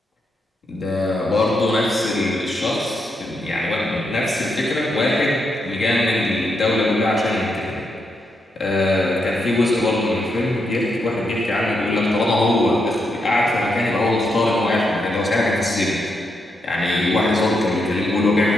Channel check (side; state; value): both; normal; correlation 0.82